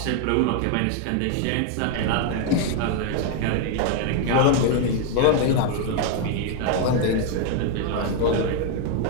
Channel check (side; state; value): both; different; correlation 0.00